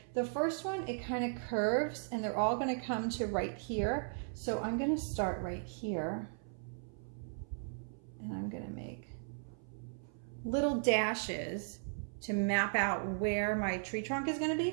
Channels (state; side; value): silent; left; 53 dB below the other